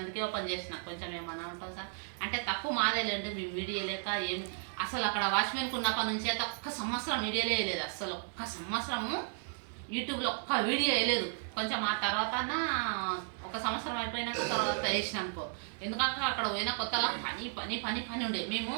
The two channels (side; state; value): left; silent; 55 dB below the other